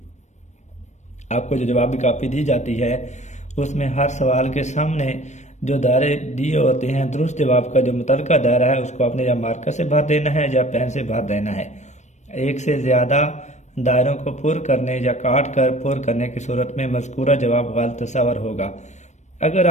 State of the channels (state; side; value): late; right; 0.34 ms